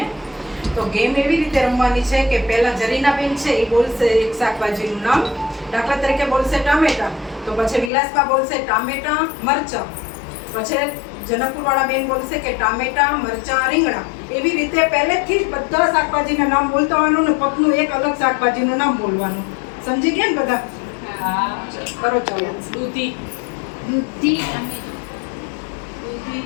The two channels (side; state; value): right; drops out; at 7.9 s